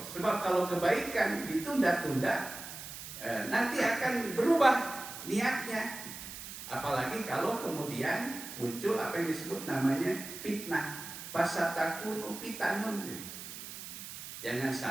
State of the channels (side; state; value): right; noise; hiss, 11 dB below the sound